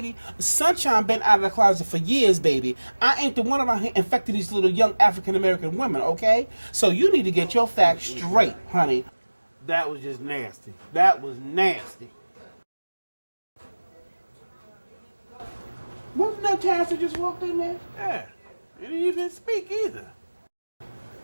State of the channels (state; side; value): inverted; both; correlation -1.00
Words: Sunshine been out of the closet for years, baby. I ain't the one around here infecting these little young African-American women, okay? So you need to get your facts straight, honey. That was just nasty. That was nasty. Wasn't that Terrence that just walked in there? Yeah. He didn't even speak either.